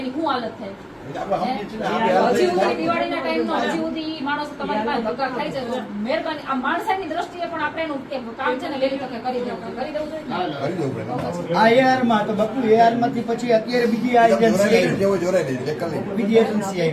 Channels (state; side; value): identical; both; correlation 1.00